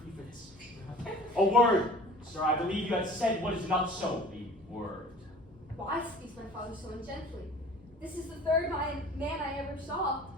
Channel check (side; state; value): both; normal; correlation 0.46